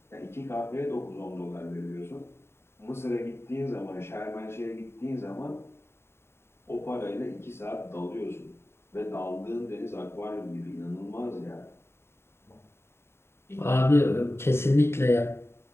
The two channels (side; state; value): right; late; 0.12 ms